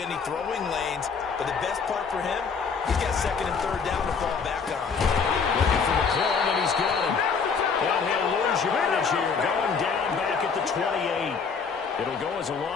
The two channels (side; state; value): right; quieter; 5.6 dB